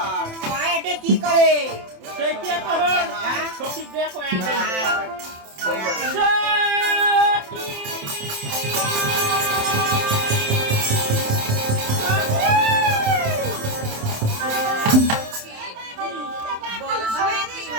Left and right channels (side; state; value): left; late; 27 ms